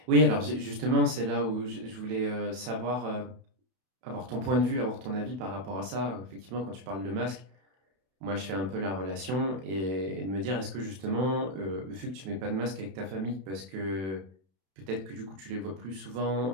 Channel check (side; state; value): left; late; 32 ms